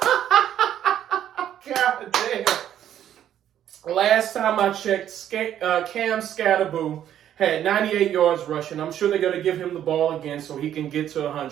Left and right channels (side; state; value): left; quieter; 10.7 dB